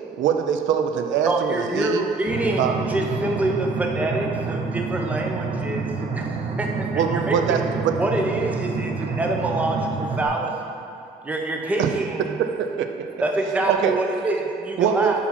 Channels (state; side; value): quieter; left; 3.9 dB